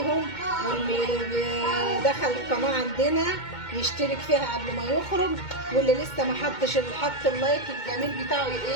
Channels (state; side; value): late; right; 2.2 ms